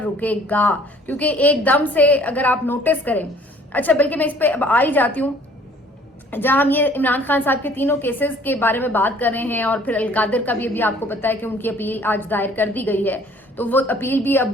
رکے گا, کیونکہ ایک دم سے اگر آپ نوٹس کریں. اچھا, بلکہ میں اس پہ اب آ ہی جاتی ہوں. جہاں ہم یہ عمران خان صاحب کے تینوں کیسز کے بارے میں بات کر رہے ہیں, اور پھر القادر کا بھی ابھی آپ کو پتا ہے کہ ان کی اپیل آج دائر کر دی گئی ہے, تو وہ اپیل بھی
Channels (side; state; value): both; normal; correlation 0.55